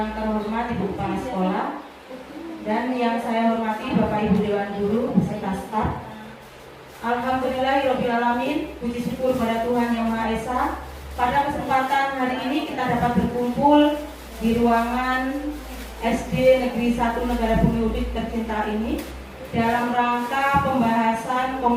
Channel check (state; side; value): identical; both; correlation 1.00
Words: terhormat Ibu Kepala Sekolah dan yang saya hormati Bapak Ibu Dewan Guru beserta staf. Alhamdulillahirobbilalamin. Puji syukur pada Tuhan Yang Maha Esa. Pada kesempatan hari ini kita dapat berkumpul di ruangan SD Negeri 1 Negara Bumi Udik tercinta ini dalam rangka pembahasan